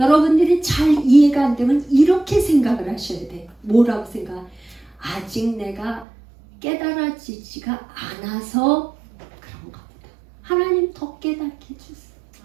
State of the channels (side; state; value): left; drops out; at 6.1 s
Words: 잘 이해가 안 되면 이렇게 생각을 하셔야 돼. 뭐라고 생각? 아직 내가 깨달아지지가 않아서 그런가 보다. 하나님 더 깨닫게 해주세요.